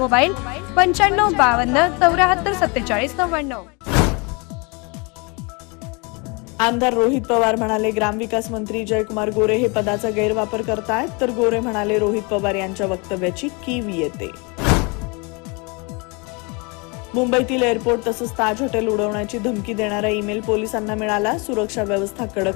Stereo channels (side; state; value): right; quieter; 30.1 dB